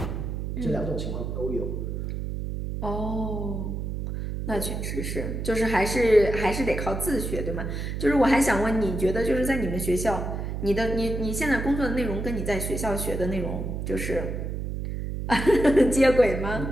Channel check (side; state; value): right; noise; hum, 4 dB below the sound